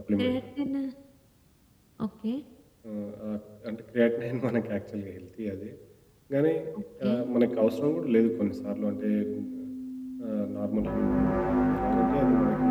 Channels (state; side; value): identical; both; correlation 1.00